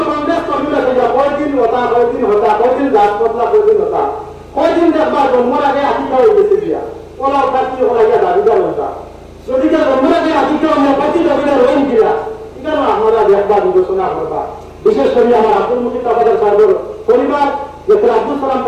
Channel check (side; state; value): both; identical; correlation 1.00